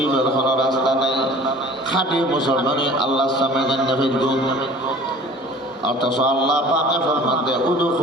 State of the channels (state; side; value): normal; both; correlation 0.46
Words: কোনো রাস্তা নেই, খাঁটি মুসলমানি আল্লাহর সামনে জান্নাতের গুণ। অথচ আল্লাহ পাকে ফরমাতে